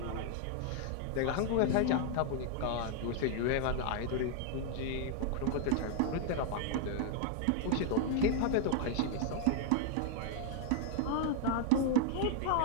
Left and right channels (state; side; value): different; both; correlation -0.01